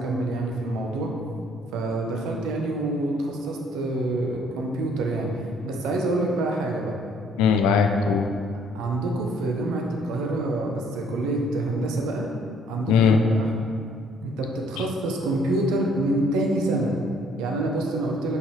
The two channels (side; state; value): both; normal; correlation 0.62